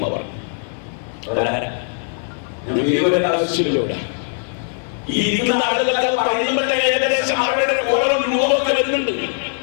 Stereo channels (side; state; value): right; silent; 66 dB below the other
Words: അവർ. ആവശ്യമില്ല. ഈ ഇരിക്കുന്ന ആളുകൾക്ക് പറയുമ്പോഴത്തെ ഏകദേശം അവരുടെ ഓരോ രൂപമൊക്കെ വരുന്നുണ്ട്.